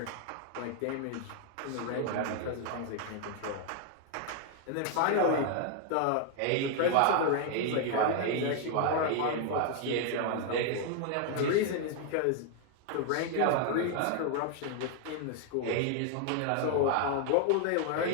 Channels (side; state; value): both; different; correlation 0.00